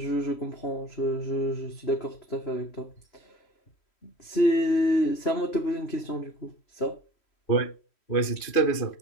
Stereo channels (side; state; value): right; late; 3.1 ms